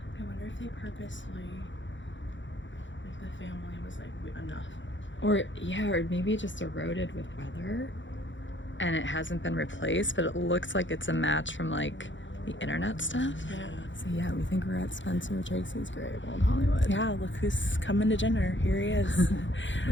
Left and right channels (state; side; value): late; right; 0.55 ms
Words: I wonder if they purposely, like the family was like, enough. Or maybe it just eroded with weather and it hasn't been replaced, but it looks like it's a match from like the internet stuff. Yeah. So we think we're at Spencer Tracy's grave, Old Hollywood. Yeah, look who's coming to dinner. Here he is.